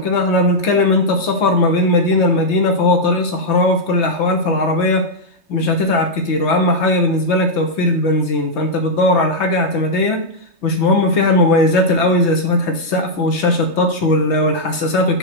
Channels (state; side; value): late; right; 3.2 ms